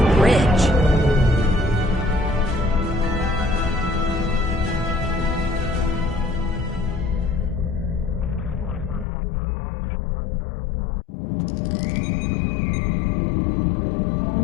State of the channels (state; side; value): drops out; right; at 9.1 s